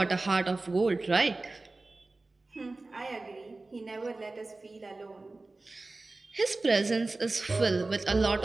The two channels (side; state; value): left; quieter; 3.3 dB